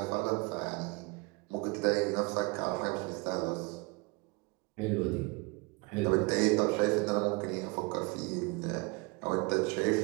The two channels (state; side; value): quieter; left; 28.3 dB